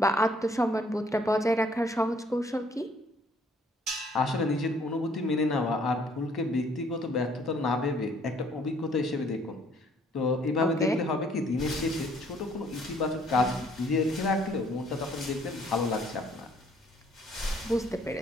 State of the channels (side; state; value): both; normal; correlation 0.62